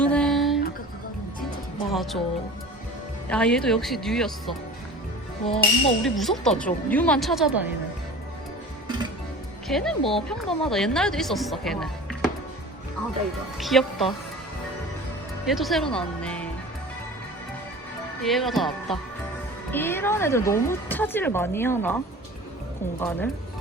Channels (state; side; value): normal; both; correlation 0.39